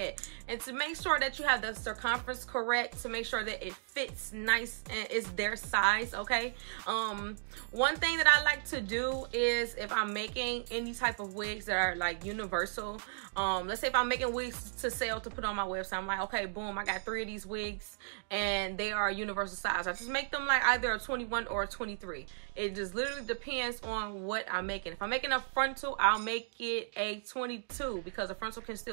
And to make sure that you have the circumference correct, to make sure that it fits nice and it's their size, okay? One thing that I like to do is if I'm making any type of wigs that are like universal, let's say if I'm making wigs to sell to put on my website, I'm like, okay, boom, I got 3 of these wigs and they are universal size. I just make them like either a 21 or a 23. It just literally depends on what I'm making. If I'm making a frontal, I'll make it a 22 because the frontal can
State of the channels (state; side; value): silent; left; digital silence